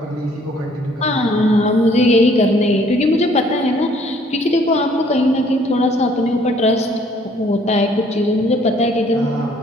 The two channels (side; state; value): both; normal; correlation 0.61